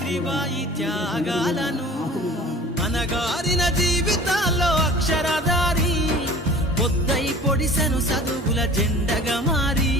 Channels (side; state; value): both; normal; correlation 0.43